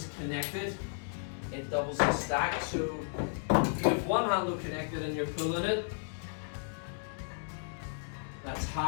connected, it doubles the stack. So you have one handle connected and you're pulling it, that's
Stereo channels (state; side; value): silent; right; digital silence